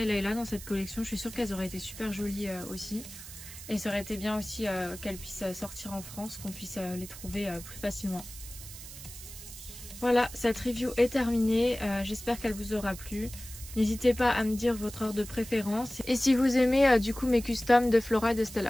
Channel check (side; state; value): right; noise; hiss, 14 dB below the sound